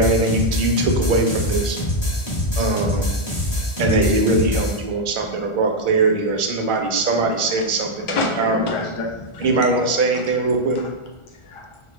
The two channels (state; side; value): late; right; 1.4 ms